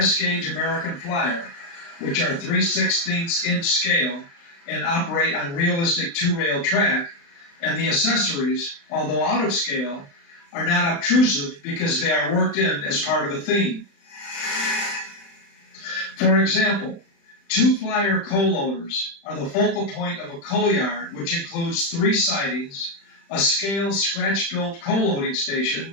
American Flyer which are 3/16" scale and operate on realistic two-rail track, and the accessories, although out of scale, are not obtrusive because they are worked in as part of a theme. For example, two Flyer coal loaders are the focal point of a coal yard, which includes 3 sidings, a scale scratch-built coal loading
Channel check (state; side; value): late; right; 35 ms